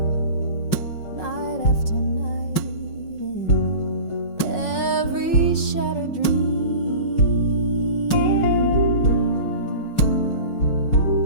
night after night in every shattered dream.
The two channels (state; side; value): late; right; 5.5 ms